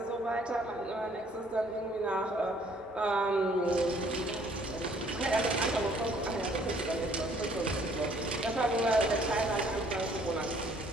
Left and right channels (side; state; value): both; normal; correlation 0.61